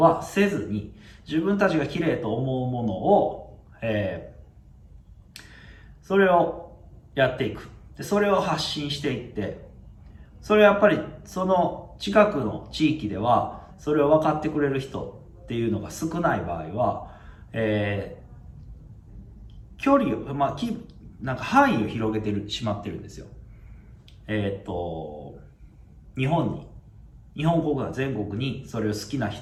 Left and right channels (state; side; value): identical; both; correlation 1.00